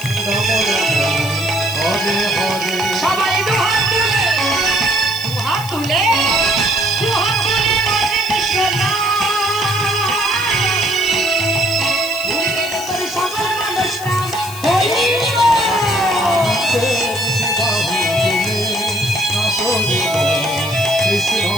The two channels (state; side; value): noise; left; hiss, 13 dB below the sound